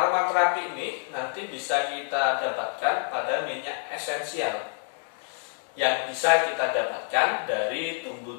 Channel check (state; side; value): silent; right; 57 dB below the other